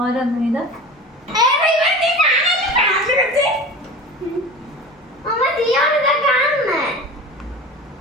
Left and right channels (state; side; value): normal; both; correlation 0.34